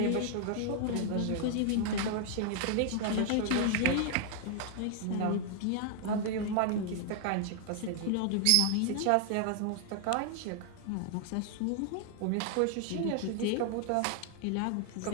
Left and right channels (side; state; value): both; different; correlation 0.00